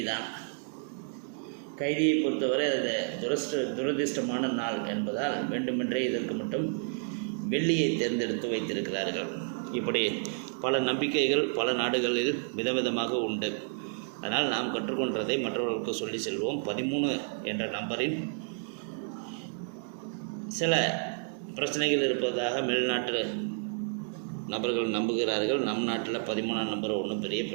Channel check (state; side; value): silent; left; 57 dB below the other